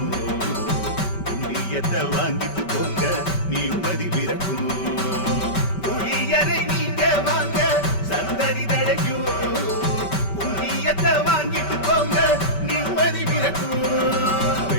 புண்ணியத்தை வாங்கிட்டு போங்க நிம்மதி பிறக்கும். புளியரை நீங்க வாங்க சந்ததி தழைக்கும், புண்ணியத்தை வாங்கிட்டு போங்க நிம்மதி பிறக்கும்.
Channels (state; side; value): late; right; 5.2 ms